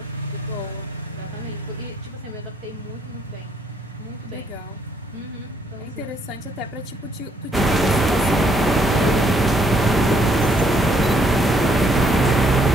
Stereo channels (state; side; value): normal; both; correlation 0.69